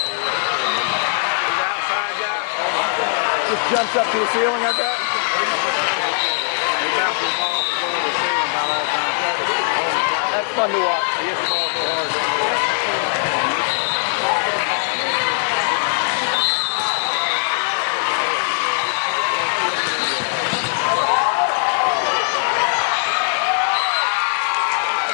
Just jumps up to the ceiling, I bet. That's fun to watch.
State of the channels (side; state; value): right; silent; digital silence